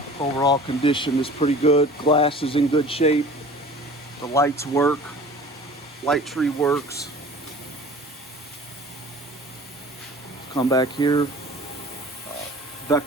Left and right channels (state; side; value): normal; both; correlation 0.43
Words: overall condition is pretty good. Glass is in good shape. The lights work. Light tree works. Let's come back here.